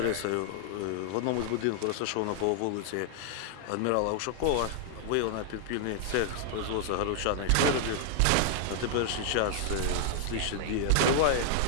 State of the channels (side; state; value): both; different; correlation 0.00